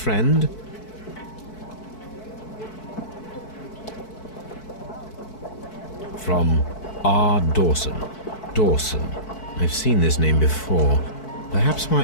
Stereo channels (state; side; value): late; right; 4.6 ms